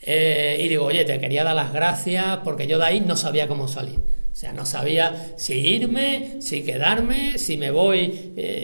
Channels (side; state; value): both; inverted; correlation -1.00